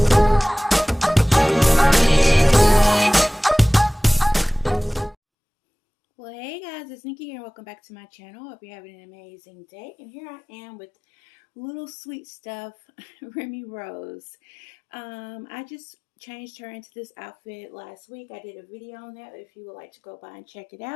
well, hey guys, it's Nikki here. Welcome back to my channel. Hope you're having an amazing day. And here I am with little sweet stuff, Remy Rose. I just changed her into this outfit last week. I did a video on that if you would like to go by and check it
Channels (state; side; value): drops out; right; at 5.2 s